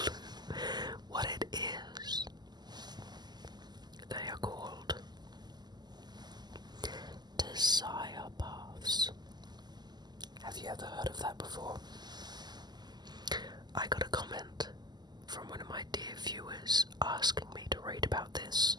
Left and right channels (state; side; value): late; left; 0.21 ms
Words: what it is. They are called desire paths. Have you ever heard of that before? I got a comment from one of my dear viewers asking me to read about this.